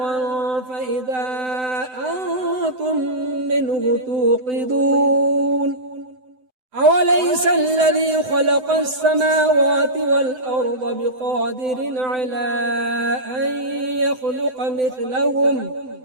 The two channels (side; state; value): left; late; 7.9 ms